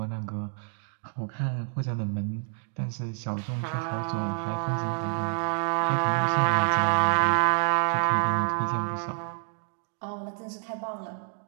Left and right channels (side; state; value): left; silent; digital silence